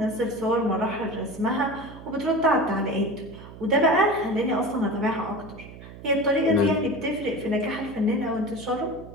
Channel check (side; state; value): right; noise; hum, 16 dB below the sound